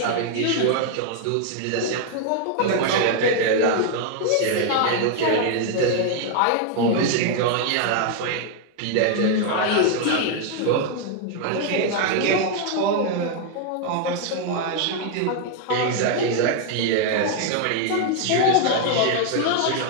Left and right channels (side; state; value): both; different; correlation 0.00